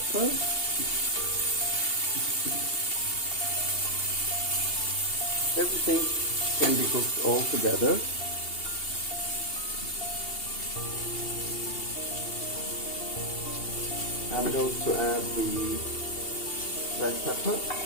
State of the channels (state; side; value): late; right; 2.8 ms